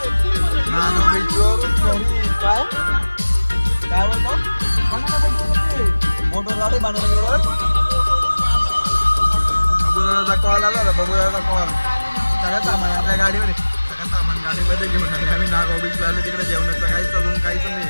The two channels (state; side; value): inverted; both; correlation -1.00